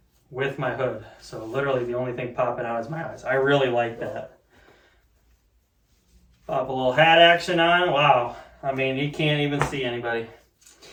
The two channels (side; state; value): both; identical; correlation 1.00